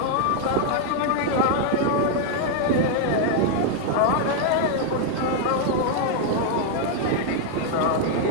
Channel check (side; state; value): both; different; correlation 0.00